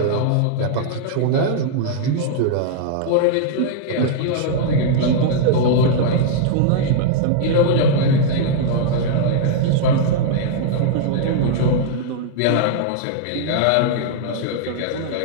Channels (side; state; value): both; different; correlation -0.01